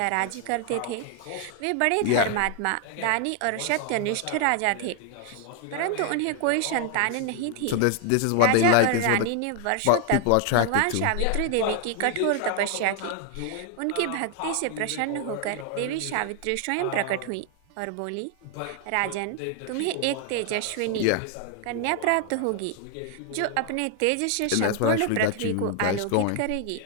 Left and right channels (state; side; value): different; both; correlation 0.00